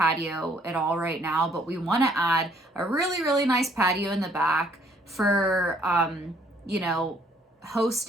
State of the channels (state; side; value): normal; both; correlation 0.64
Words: at all right now, but we want to add a really, really nice patio in the back for,